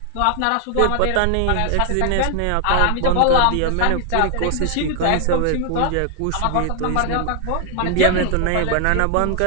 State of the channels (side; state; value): both; different; correlation 0.00